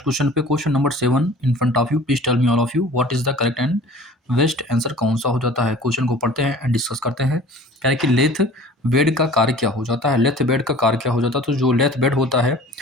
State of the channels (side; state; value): both; normal; correlation 0.45